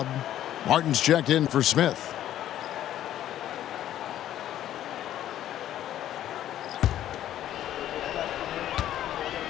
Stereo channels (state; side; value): quieter; right; 12.0 dB